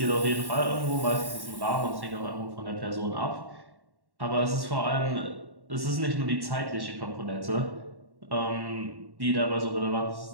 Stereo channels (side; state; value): left; late; 1.1 ms